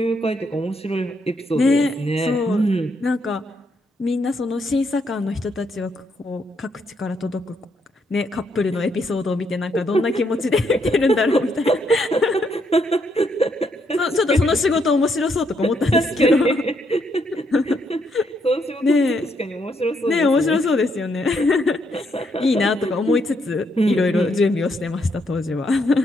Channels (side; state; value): both; normal; correlation 0.75